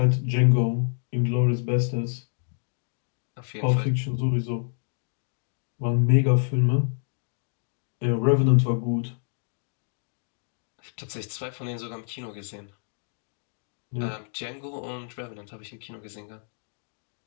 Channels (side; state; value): right; silent; digital silence